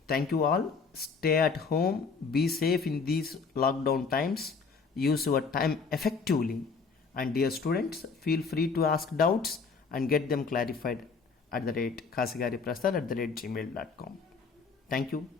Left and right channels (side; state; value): right; quieter; 5.0 dB